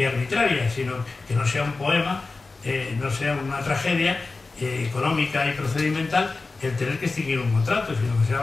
arbitraria, sino que no sea un poema, no sea una tragedia económica y procedimental el tener que extinguir un contrato, sino que sea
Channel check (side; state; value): right; quieter; 3.8 dB